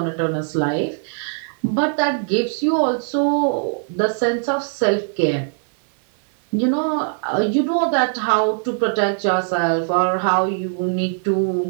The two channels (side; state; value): left; silent; digital silence